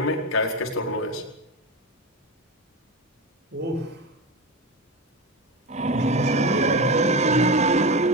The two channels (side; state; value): both; normal; correlation 0.20